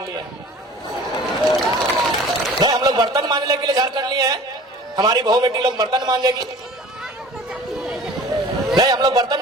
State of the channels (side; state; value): both; normal; correlation 0.44